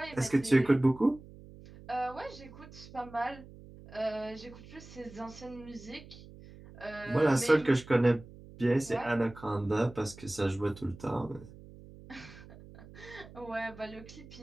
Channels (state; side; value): noise; right; hum, 18 dB below the sound